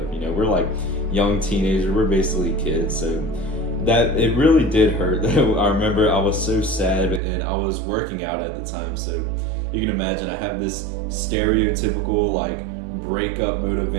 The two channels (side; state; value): left; drops out; at 7.2 s